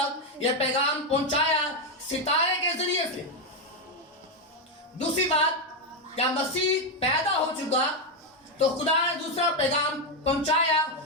یہ پیغام پہنچایا ستارے کے ذریعے سے. دوسری بات, جب مسیح پیدا ہو چکا تو خدا نے دوسرا پیغام پہنچایا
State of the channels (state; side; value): normal; both; correlation 0.05